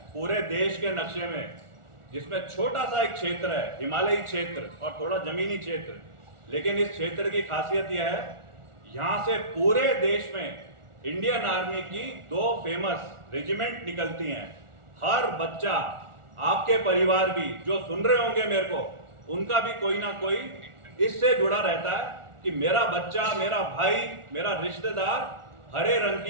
पूरे देश के नक्शे में जिसमें छोटा सा एक क्षेत्र है, हिमालयी क्षेत्र और थोड़ा जमीनी क्षेत्र। लेकिन इस क्षेत्र की खासियत यह है, यहां से पूरे देश में इंडियन आर्मी की 2 फेमस रेजिमेंट निकलती हैं। हर बच्चा, आपके परिवार भी जो सुन रहे होंगे मेरे को, उनका भी कोई ना कोई इससे जुड़ा रहता है कि मेरा बच्चा, मेरा भाई, मेरा रिश्तेदार हरे रंग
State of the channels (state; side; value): late; left; 1.4 ms